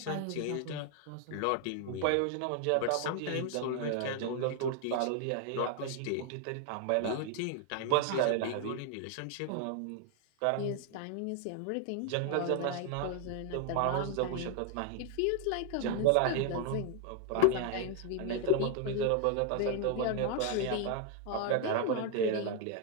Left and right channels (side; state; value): both; different; correlation 0.00